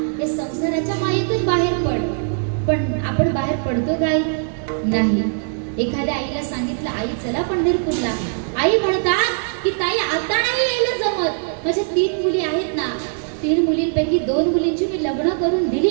या संसाराच्या मायेतून बाहेर पड. पण आपण बाहेर पडतो काय नाही. एखाद्या आईला सांगितलं, आई चला पंढरपूरला, आई म्हणतात की ताई आता नाही यायला जमत, माझ्या 3 मुली आहेत ना, 3 मुलींपैकी 2 मुलींची मी लग्न करून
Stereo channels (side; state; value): left; silent; digital silence